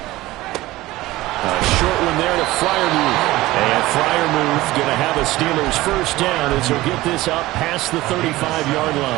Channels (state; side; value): quieter; left; 17.9 dB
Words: A short one there to Freiermuth. And Freiermuth going to have a Steelers first down as he'll get this up past the 35-yard